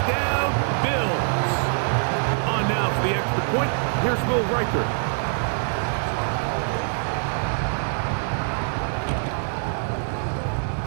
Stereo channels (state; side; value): silent; left; 62 dB below the other